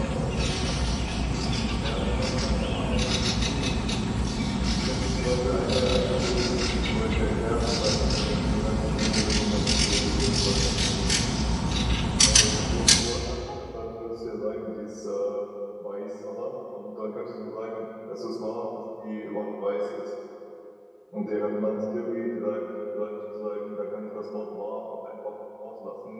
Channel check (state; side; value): identical; both; correlation 1.00